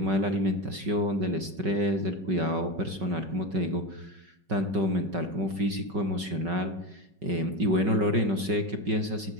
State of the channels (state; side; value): late; left; 5.3 ms